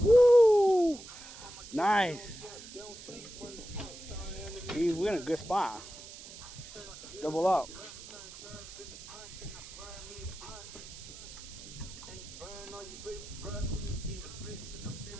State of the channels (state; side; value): noise; right; hiss, 15 dB below the sound